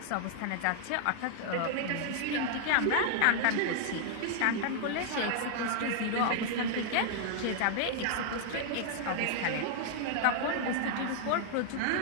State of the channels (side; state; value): both; different; correlation -0.01